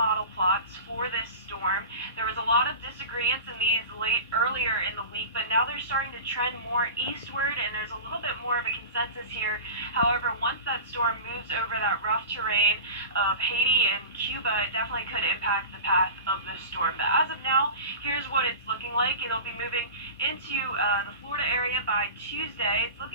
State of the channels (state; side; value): inverted; both; correlation -0.33